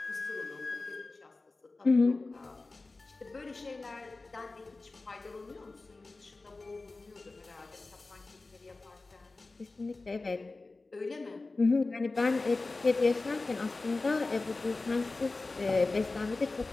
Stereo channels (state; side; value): quieter; right; 3.4 dB